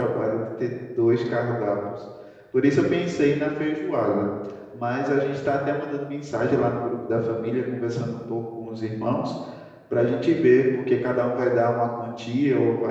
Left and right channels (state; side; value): identical; both; correlation 1.00